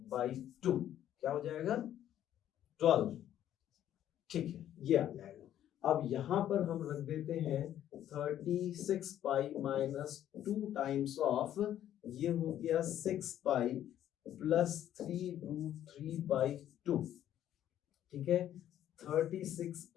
क्या हो जाएगा 12, ठीक है ये आ जाएगा। अब यहां पर हम रख देते हैं 36 पाई माइनस 2 टाइम्स ऑफ, ये हो गया 6 पाई प्लस 3√3/2, ठीक है। 36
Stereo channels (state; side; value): quieter; right; 11.4 dB